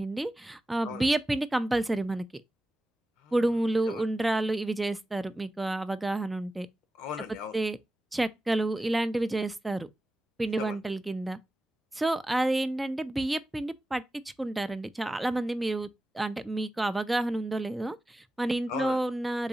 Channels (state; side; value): normal; both; correlation 0.94